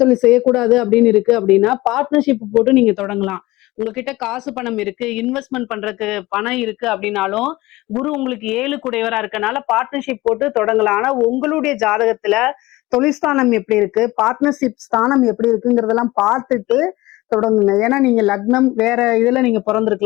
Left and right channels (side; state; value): right; quieter; 19.5 dB